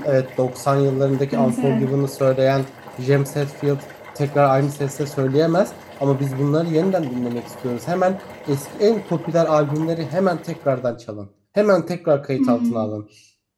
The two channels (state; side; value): identical; both; correlation 1.00